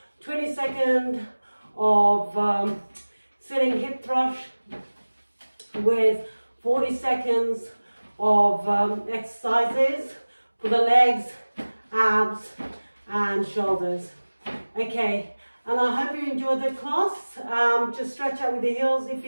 20 seconds of sitting hip thrust with 40 seconds of exercises for the legs, abs and shoulders. Okay, and I hope you enjoyed the class. Just stretch out with the heels if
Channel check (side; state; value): both; inverted; correlation -1.00